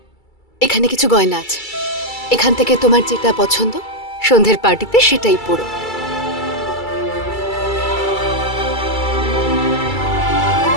এখানে কিছু গয়না আছে, এখান থেকে তোমার যেটা পছন্দ সন্ধ্যের পার্টিতে সেটাই পরো।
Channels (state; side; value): late; right; 2.3 ms